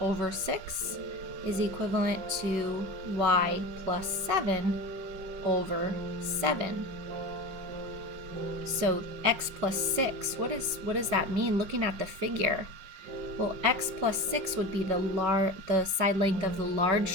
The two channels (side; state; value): left; late; 5.4 ms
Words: 6 is equivalent to y plus 7 over 7. So x plus 6, what does that mean looking at the figure? Well, x plus 6 would be the side length of the large